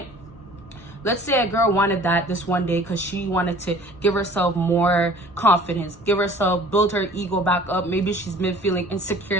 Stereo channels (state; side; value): normal; both; correlation 0.49